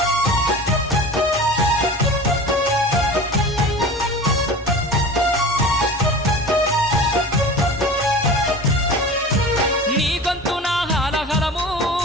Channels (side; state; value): both; normal; correlation 0.36